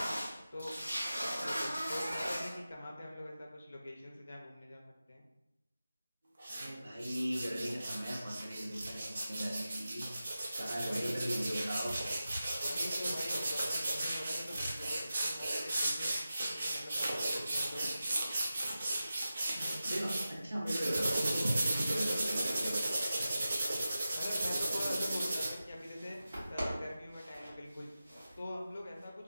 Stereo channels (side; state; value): both; inverted; correlation -0.93